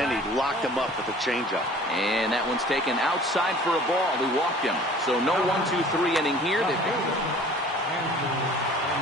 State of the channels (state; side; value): normal; both; correlation 0.48